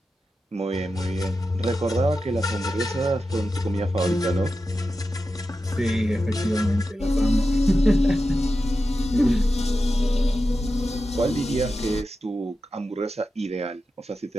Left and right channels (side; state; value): both; normal; correlation 0.91